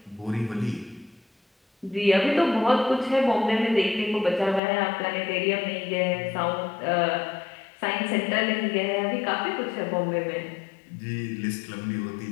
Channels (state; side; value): drops out; right; at 4.6 s